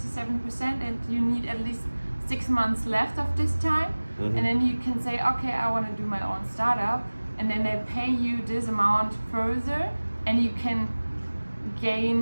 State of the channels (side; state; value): both; inverted; correlation -1.00